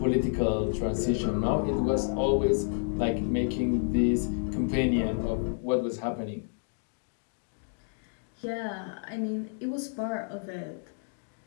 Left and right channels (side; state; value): right; silent; digital silence